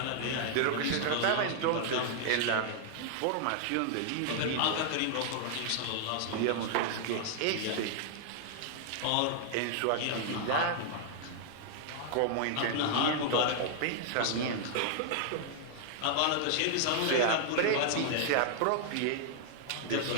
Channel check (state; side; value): different; both; correlation -0.01